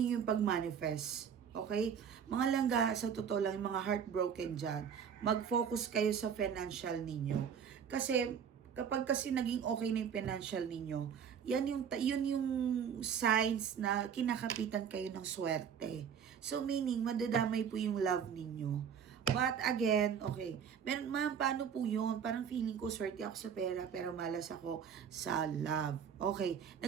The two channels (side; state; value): left; quieter; 7.6 dB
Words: yung pag-manifest. Okay? Mga langga, sa totoo lang, yung mga heartbroken dyan, mag-focus kayo sa financial ninyo. Kasi, kapag kasi naging okay na yung financial ninyo, yun yung signs na kinakapitan kayo ng swerte. So, meaning, madadamay po yung love ninyo. But again, okay, ma'am, paano po yun? Parang feeling ko, swerte ako sa pera, pero malas ako sa love. Okay,